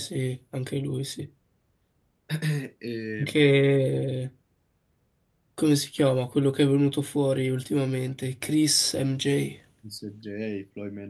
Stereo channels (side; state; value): both; identical; correlation 1.00